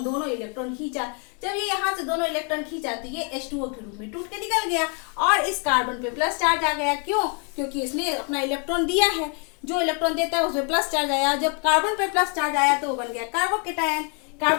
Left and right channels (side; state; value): right; quieter; 38.2 dB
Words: दोनों इलेक्ट्रॉन खींचा। जब ये यहाँ से दोनों इलेक्ट्रॉन खींचा तो ये H2O के रूप में टूट के निकल गया, और इस कार्बन पे प्लस चार्ज आ गया। क्यों, क्योंकि इसने अपना इलेक्ट्रॉन दिया है, जो इलेक्ट्रॉन देता है उसमें प्लस चार्ज आया। जब कार्बन पे प्लस चार्ज आया तो वो बन गया कार्बोकैटायन।